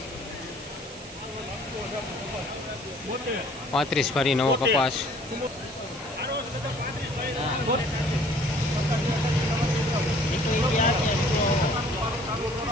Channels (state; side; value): noise; right; hiss, 16 dB below the sound